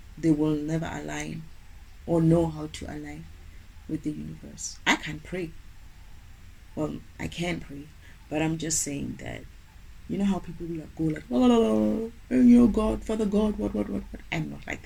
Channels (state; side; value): identical; both; correlation 1.00